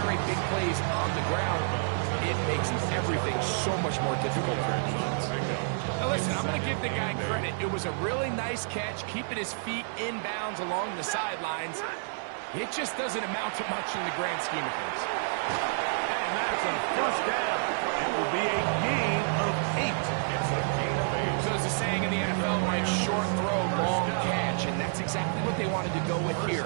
big plays on the ground, it makes everything so much more difficult for the defense. Now listen, I'm going to give the guy credit. It was a really nice catch, keeping his feet inbounds along the sidelines. It just doesn't amount to much in the grand scheme of things. And that's a first down. It will be a gain of 8. It's a gain of 8. So there's a saying in the NFL, Mike, short throw, long catch, and that's exactly what they wanted to go with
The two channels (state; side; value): silent; left; digital silence